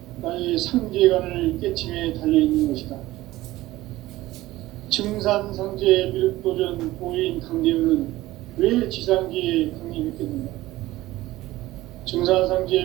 나의 상제관을 깨침에 달려있는 것이다. 증산상제 미륵도전 도인 강대훈은 왜 지상계에 강림했겠는가? 증산상제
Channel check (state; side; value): quieter; left; 17.1 dB